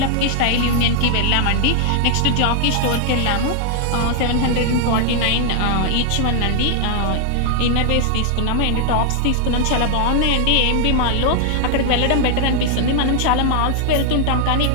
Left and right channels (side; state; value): both; different; correlation 0.00